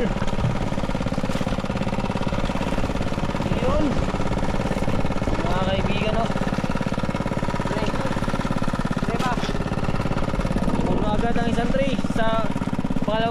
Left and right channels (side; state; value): both; identical; correlation 1.00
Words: Yun mga kaibigan oh. Puno agad ang isang tray sa